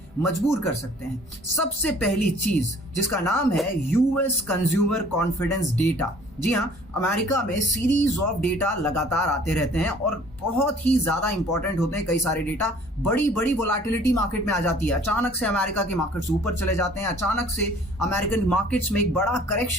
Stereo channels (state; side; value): normal; both; correlation 0.54